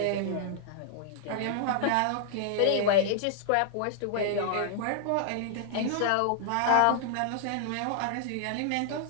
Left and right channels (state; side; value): different; both; correlation -0.01